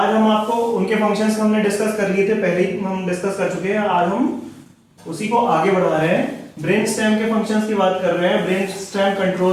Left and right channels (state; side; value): identical; both; correlation 1.00